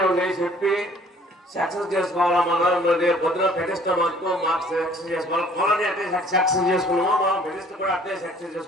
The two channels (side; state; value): both; normal; correlation 0.56